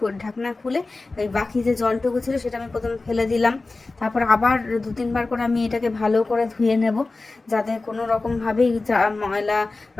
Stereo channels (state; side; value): quieter; right; 3.4 dB